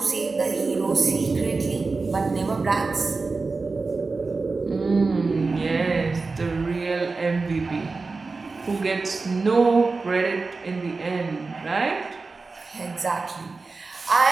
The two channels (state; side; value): quieter; left; 4.0 dB